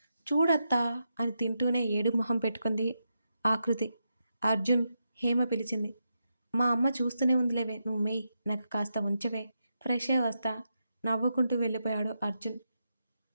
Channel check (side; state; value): both; inverted; correlation -0.85